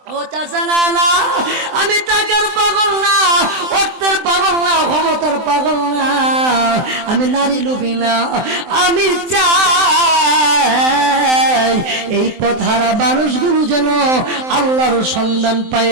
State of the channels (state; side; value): late; left; 23 ms